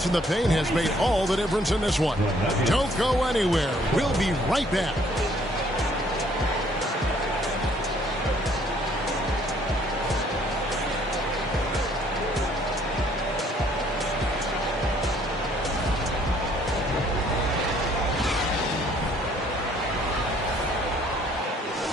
in the paint has made all the difference in this one. Don't go anywhere. We'll be right back.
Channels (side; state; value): both; normal; correlation 0.62